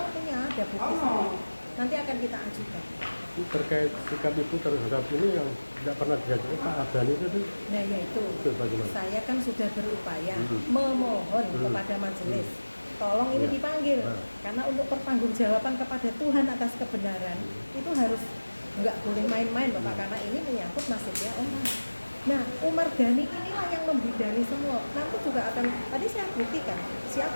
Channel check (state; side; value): inverted; both; correlation -1.00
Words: punya ada bukti sendiri. Nanti akan kita ajukan. Terkait sikap ibu terhadap ini yang tidak pernah diajukan Pak Adani itu? Nah yaitu, bagaimana? saya kan sudah berupaya memohon kepada majelis, tolong ini dipanggil, karena untuk pertanggungjawaban kepada Tuhan atas kebenaran itu harus nggak boleh main-main Bapak, karena ini menyangkut nasibnya orang. Nah, Umar Ghani inilah yang membidani semua. Nanti juga akan, tadi saya buktikan siapa